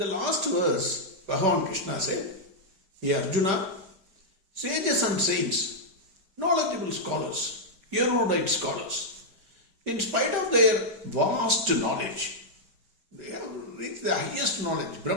last verse, Bhagwan Krishna said, Hey Arjuna, sages and saints, knowledgeable scholars, erudite scholars, in spite of their vast knowledge, they have reached the highest knowledge,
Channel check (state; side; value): late; left; 5.2 ms